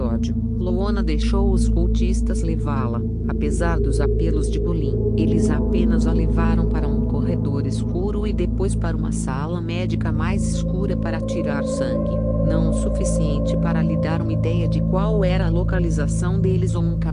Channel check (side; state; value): both; identical; correlation 1.00